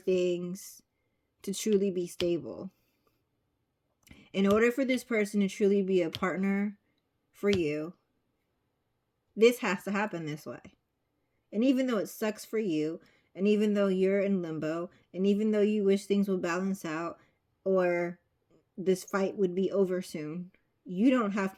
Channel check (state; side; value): identical; both; correlation 1.00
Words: to truly be stable. In order for this person to truly be a partner for you, this has to happen this way. And even though it sucks for you, and even though you're in limbo, and even though you wish things would balance out, or this fight would be over soon, you don't have